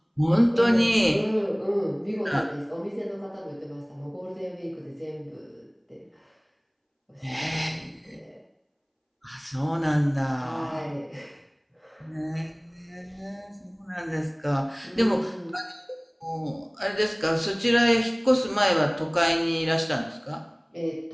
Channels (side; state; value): both; identical; correlation 1.00